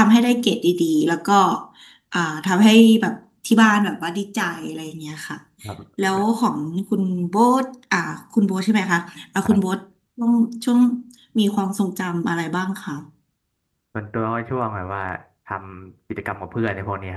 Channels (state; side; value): identical; both; correlation 1.00